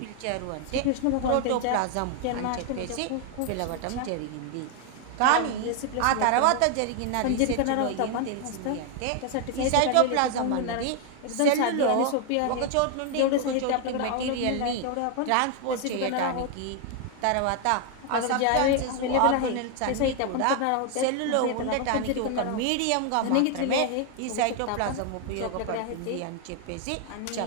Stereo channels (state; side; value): different; both; correlation 0.00